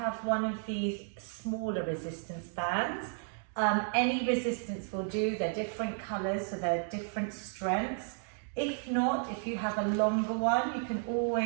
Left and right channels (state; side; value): silent; left; 56 dB below the other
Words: one of these smaller resistance bands, any resistance will do. They're different colours, so they're different strengths. If not, if you have a longer one, you can